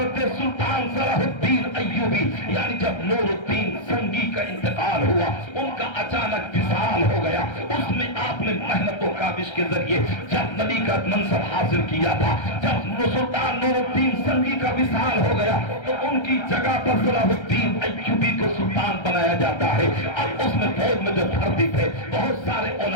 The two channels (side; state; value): right; late; 1.3 ms